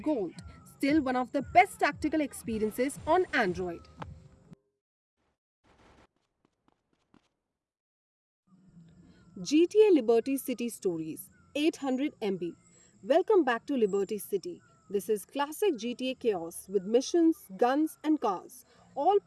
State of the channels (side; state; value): both; identical; correlation 1.00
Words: Still one of the best tactical experiences on Android. GTA Liberty City Stories 800 MB. Welcome back to Liberty City. This is classic GTA chaos with missions, guns, and cars, all